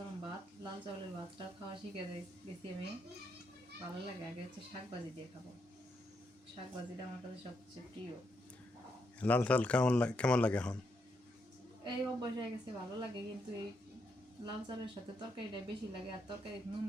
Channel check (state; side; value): normal; both; correlation 0.79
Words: ভাত, লাল চাউলের ভাতটা খাওয়া শিখে গেছি আমি, ভালো লাগে। আগে হচ্ছে শাক ভাজি দিয়ে খাবো, শাক ভাজিটা আমার কাছে সবচেয়ে প্রিয়। লাল চাল কেমন লাগে এখন? এই অভ্যাস হয়ে গেছে, ভালো লাগে, কিন্তু এই লাল চালের সাথে তরকারিটা বেশি লাগে, আর তরকারি